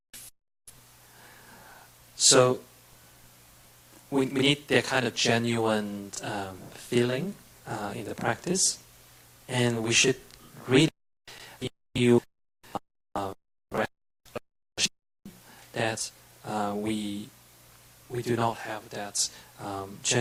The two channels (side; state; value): both; identical; correlation 1.00